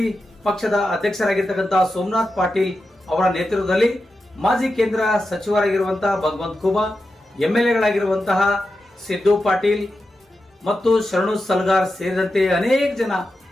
ಪಕ್ಷದ ಅಧ್ಯಕ್ಷರಾಗಿರ್ತಕ್ಕಂತಹ ಸೋಮನಾಥ್ ಪಾಟೀಲ್ ಅವರ ನೇತೃತ್ವದಲ್ಲಿ ಮಾಜಿ ಕೇಂದ್ರ ಸಚಿವರಾಗಿರುವಂತಹ ಭಗವಂತ ಖೂಬಾ, ಎಂಎಲ್ಎಗಳಾಗಿರುವಂತಹ ಸಿದ್ದು ಪಾಟೀಲ್ ಮತ್ತು ಶರಣು ಸಲ್ಗಾರ್ ಸೇರಿದಂತೆ ಅನೇಕ ಜನ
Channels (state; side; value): normal; both; correlation 0.90